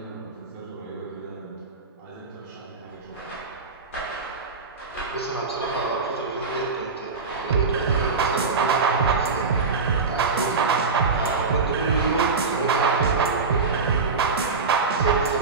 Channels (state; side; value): quieter; left; 4.5 dB